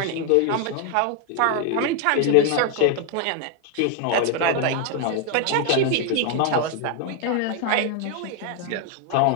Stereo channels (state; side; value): different; both; correlation 0.01